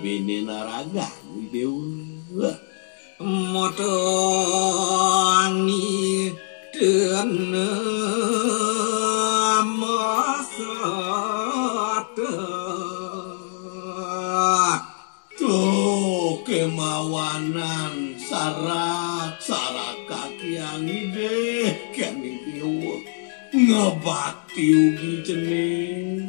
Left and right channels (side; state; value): right; silent; 61 dB below the other